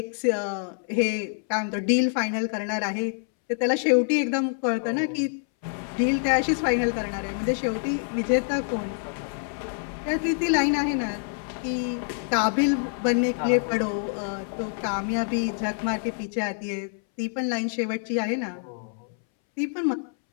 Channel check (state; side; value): silent; right; 61 dB below the other